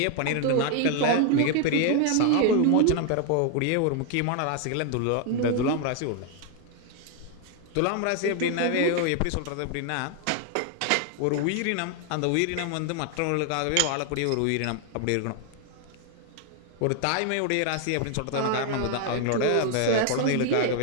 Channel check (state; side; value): different; both; correlation 0.00